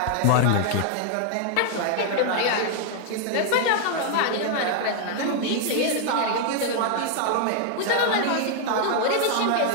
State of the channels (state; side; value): different; both; correlation 0.00